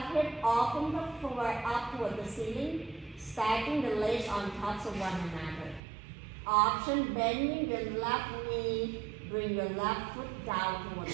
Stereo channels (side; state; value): left; drops out; at 5.8 s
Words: hip off from the floor up toward the ceiling, stacking the legs on top of one another. Option, bending your left knee, bring your left foot down toward the